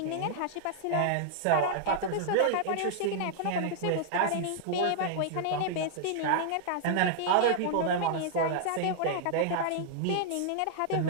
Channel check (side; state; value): both; different; correlation -0.01